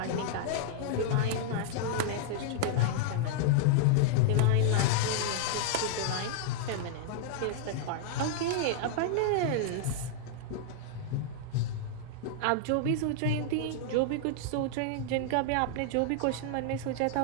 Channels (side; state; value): both; different; correlation -0.01